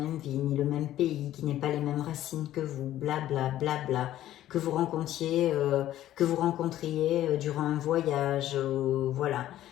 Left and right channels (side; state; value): right; quieter; 13.2 dB